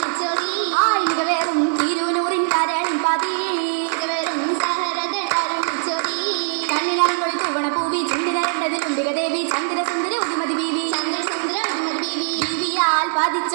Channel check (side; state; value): left; silent; 65 dB below the other